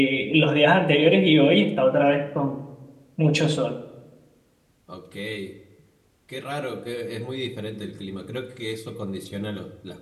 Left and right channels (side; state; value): both; identical; correlation 1.00